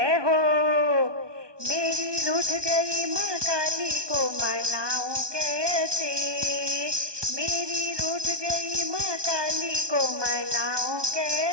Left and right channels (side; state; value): left; late; 1.2 ms